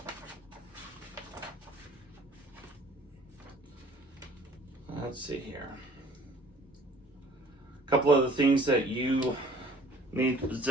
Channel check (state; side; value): normal; both; correlation 0.54